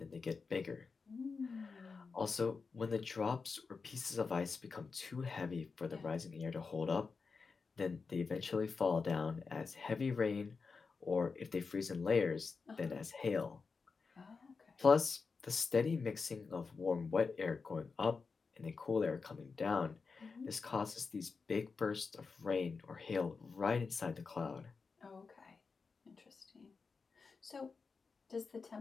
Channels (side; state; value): right; quieter; 4.8 dB